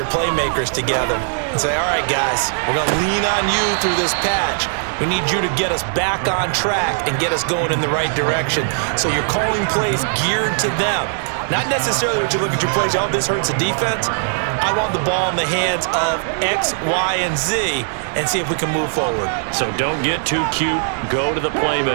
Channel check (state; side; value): silent; left; digital silence